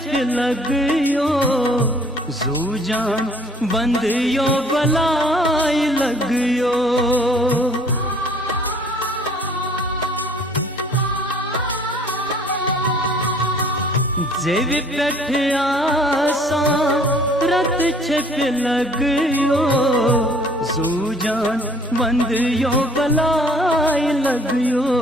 लगयो जू जान बंदियो बलाई लगयो जेब पेठ आसा रत छिप लगयो जू जान बंदियो बलाई लगयो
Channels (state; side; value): normal; both; correlation 0.56